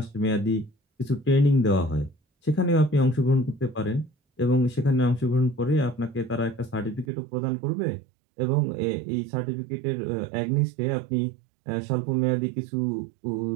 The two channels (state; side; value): drops out; left; at 7.1 s